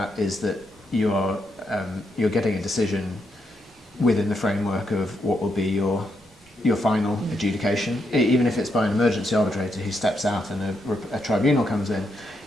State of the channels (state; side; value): normal; both; correlation 0.80